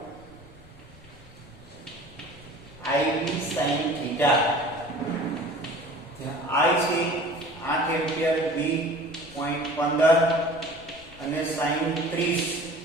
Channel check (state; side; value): noise; left; rumble, 23 dB below the sound